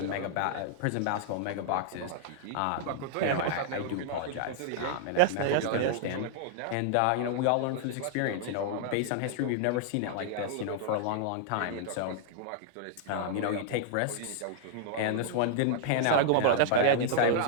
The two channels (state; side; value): different; both; correlation -0.01